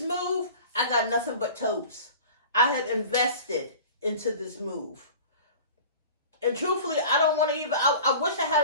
I got nothing but totes. I have invested into this move. And truthfully, I don't want to even, I wish I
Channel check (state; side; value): inverted; both; correlation -0.40